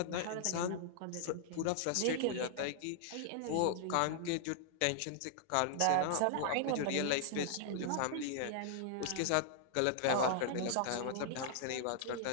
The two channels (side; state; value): both; different; correlation -0.01